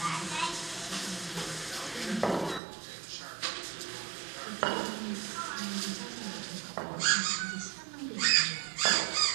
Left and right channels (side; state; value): left; drops out; at 2.6 s